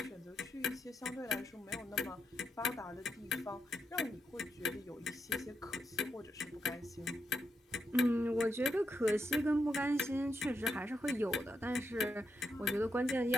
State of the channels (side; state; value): both; normal; correlation 0.83